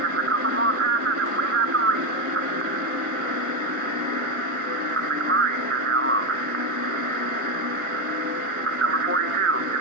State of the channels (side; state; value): left; late; 1.5 ms